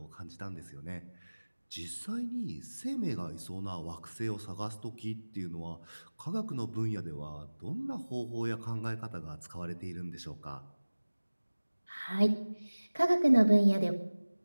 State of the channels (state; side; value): inverted; both; correlation -1.00